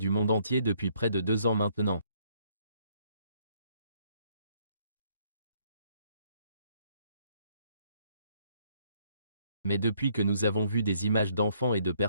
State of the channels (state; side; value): inverted; both; correlation -0.67